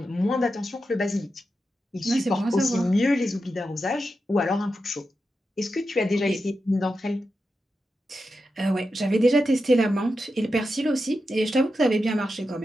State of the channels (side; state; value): both; normal; correlation 0.89